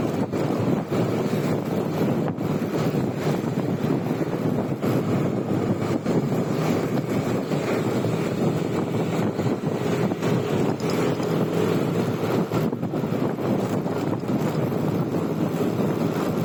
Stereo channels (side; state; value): both; identical; correlation 1.00